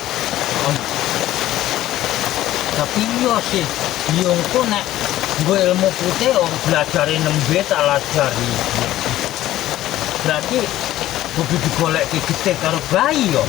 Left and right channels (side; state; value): right; quieter; 14.4 dB